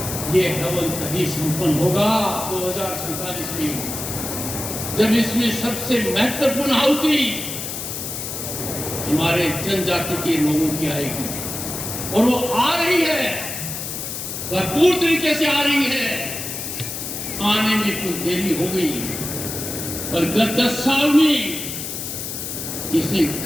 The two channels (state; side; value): noise; left; hiss, 6 dB below the sound